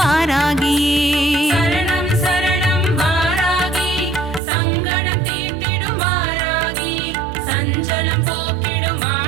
சரணம் சரணம் வாராகி சங்கடம் தீர்த்திடும் வாராகி சஞ்சலம் போக்கிடும்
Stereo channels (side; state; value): left; drops out; at 4.4 s